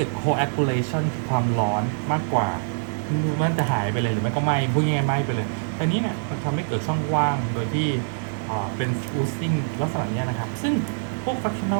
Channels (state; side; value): silent; left; 57 dB below the other